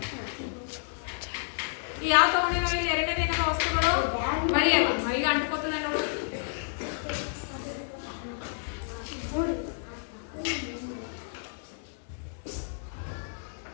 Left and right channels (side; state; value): right; silent; digital silence